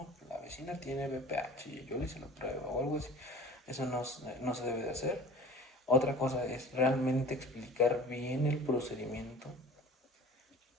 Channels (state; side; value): normal; both; correlation 0.43